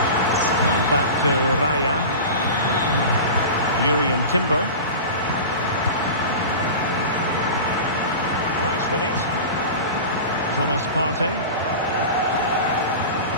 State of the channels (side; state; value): both; inverted; correlation -0.31